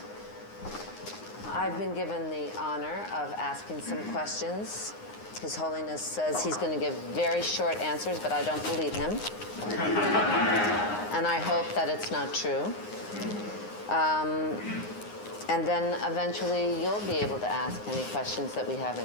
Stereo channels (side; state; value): right; late; 9.7 ms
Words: I've been given the honor of asking some questions. His Holiness says he's going to give very short answers, but I don't believe him. And I hope that it's not true. And then eventually you'll be able to ask any questions that we